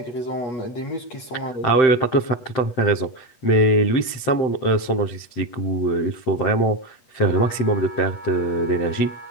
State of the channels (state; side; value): late; right; 8.3 ms